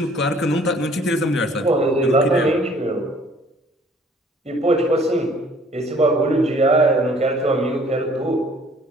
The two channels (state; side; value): normal; both; correlation 0.56